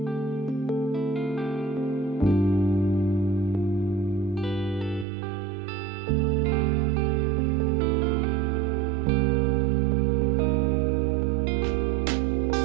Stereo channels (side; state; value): left; drops out; at 5.1 s